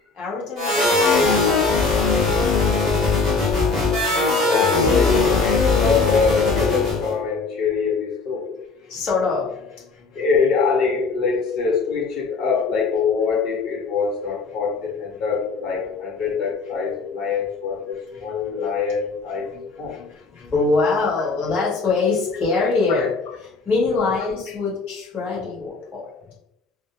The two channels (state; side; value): quieter; right; 4.0 dB